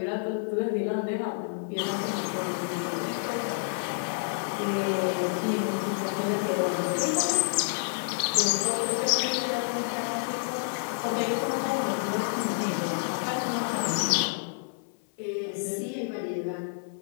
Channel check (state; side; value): silent; right; 59 dB below the other